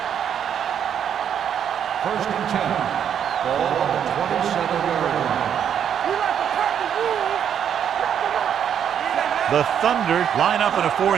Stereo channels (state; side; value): quieter; left; 8.7 dB